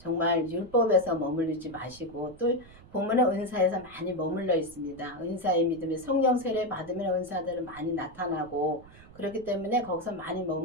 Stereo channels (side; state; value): right; noise; rumble, 22 dB below the sound